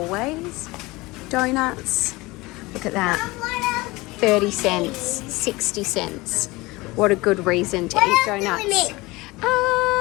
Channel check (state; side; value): quieter; right; 21.8 dB